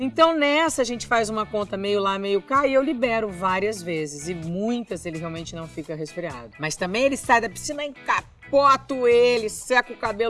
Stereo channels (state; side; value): identical; both; correlation 1.00